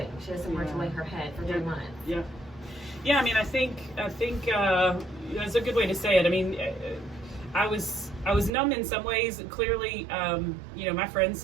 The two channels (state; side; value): drops out; left; at 8.5 s